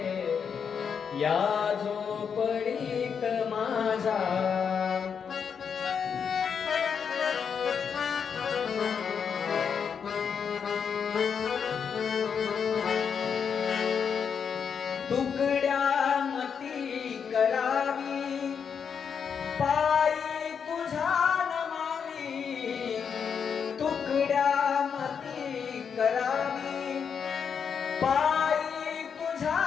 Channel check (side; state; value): right; quieter; 6.8 dB